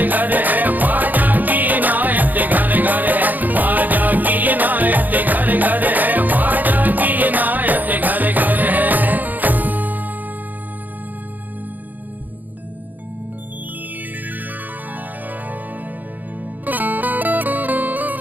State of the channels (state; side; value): late; left; 0.083 ms